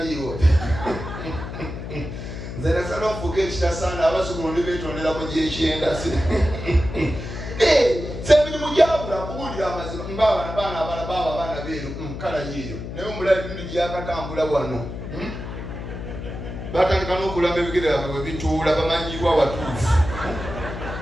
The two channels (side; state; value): left; noise; hum, 8 dB below the sound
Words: nzena sana ofuga ekitasaana abazukulu ndi beetondera mu gyekyenda semirimu gyabula kuwulira amazima mbabaana abaana beeru kala yiyo naye omulabi bindi gyakatambula wano batandika n'okulamba ebigere byabwe bwe bituula bamanyibwa watuufu